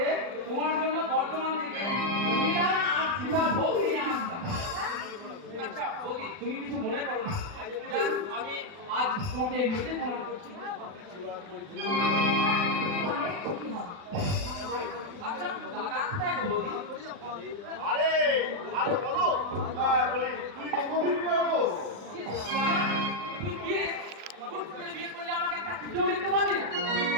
তোমার জন্য বর্তমান থেকে মীরা আর সীতা ভোগ নিয়ে আসতাম। আচ্ছা বৌদি, তুমি কিছু মনে করো না। যাক, আমি আজ তোমাকে এমনিতে প্রণাম করছি। অনেক সুখী হও। আচ্ছা দাদা কোথায় গো বৌদি? আরে আরে বলো বলি তুই কখন দিবি না গো? ইস, দাদা, তুই কি রে? হুট করে বিয়ে করলে আমাকে একটা চিঠিও লিখতে পারলি না?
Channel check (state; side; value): late; left; 40 ms